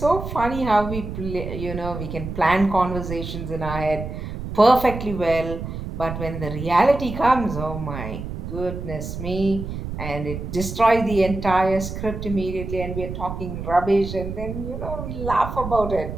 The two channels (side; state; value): right; noise; rumble, 7 dB below the sound